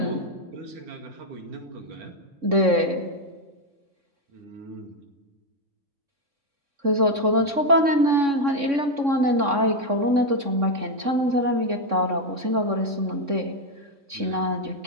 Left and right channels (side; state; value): left; late; 3.6 ms